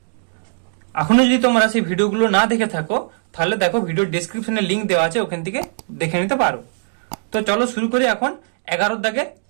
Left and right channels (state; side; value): silent; left; digital silence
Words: এখনো যদি তোমরা সেই ভিডিওগুলো না দেখে থাকো তাহলে দেখো, ভিডিও ডেসক্রিপশনে লিংক দেওয়া আছে, ওখান থেকে দেখে নিতে পারো। তো চলো শুরু করি এখন 11-এর দাগের